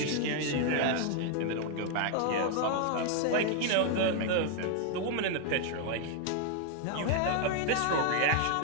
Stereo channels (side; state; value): both; different; correlation 0.00